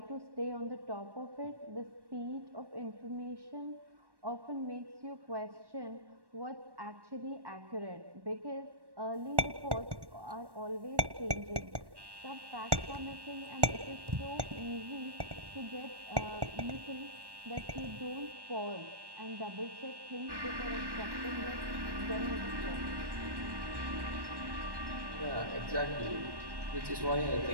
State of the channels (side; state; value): left; late; 1.1 ms